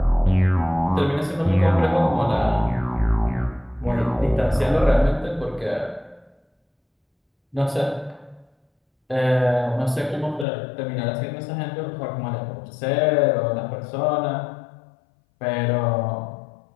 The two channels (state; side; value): drops out; right; at 10.5 s